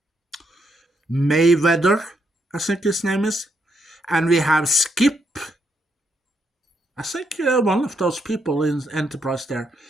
Mayweather, I think his name is, and we have Skip. I think one of those people in Enterprise there,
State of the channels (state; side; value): normal; both; correlation 0.78